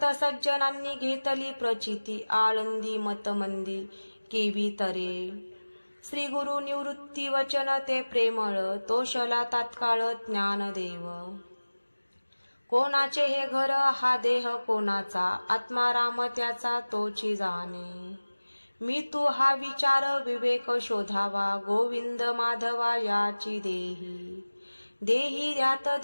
सज्जनांनी घेतली प्रचिती आळंदी मतमंदी केवी तरे श्री गुरु निवृत्ती वचन ते प्रेमळ तोषला तात्काळ ज्ञानदेव कोणाचे हे घर हा देह कोणाचा आत्मा राम त्याचा तोची जाणे मी तू हा विचार विवेक शोधावा गोविंद माधवा याची देही देही ध्यात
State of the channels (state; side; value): inverted; both; correlation -1.00